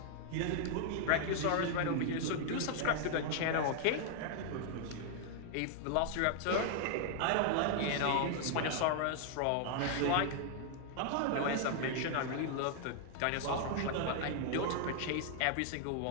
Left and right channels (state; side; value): different; both; correlation 0.00